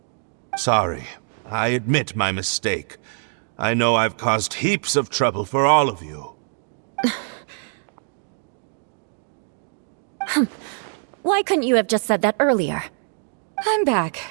Sorry. I admit my mistake. I know I've caused heaps of trouble for all of you. Why couldn't you have just said that earlier? I'm back.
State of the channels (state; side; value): silent; left; 61 dB below the other